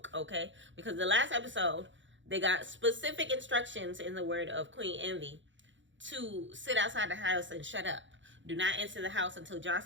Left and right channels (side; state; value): left; late; 0.54 ms